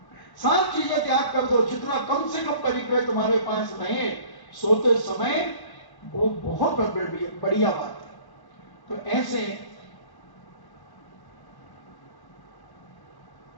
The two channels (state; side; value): late; right; 1.1 ms